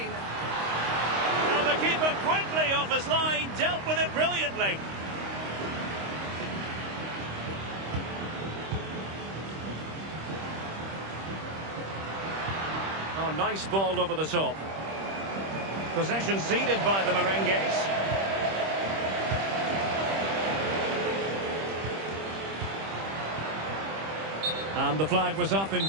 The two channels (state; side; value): late; left; 26 ms